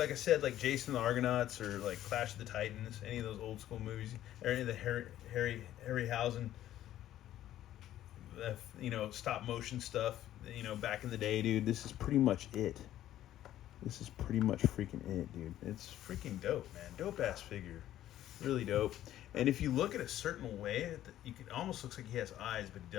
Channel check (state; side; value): quieter; right; 12.8 dB